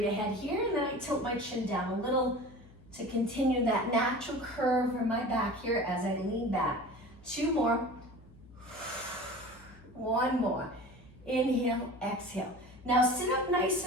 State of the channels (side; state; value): left; noise; hum, 22 dB below the sound